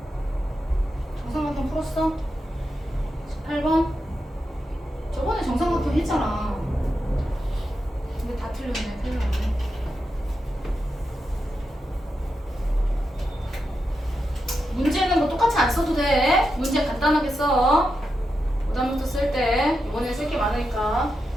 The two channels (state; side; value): normal; both; correlation 0.87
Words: 정삼각형 풀었어? 18번? 저번에 정삼각형 했잖아. 근데 다 틀렸네. 큰일 났네. 문제는 뭐 똑같이 안 써도 돼. 문제 간단하게 써. 그다음부터 쓸 때 이번에 쓸 게 많으니까